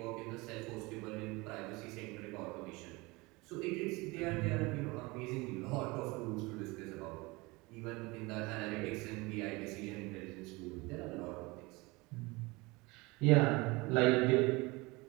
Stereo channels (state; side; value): quieter; left; 24.1 dB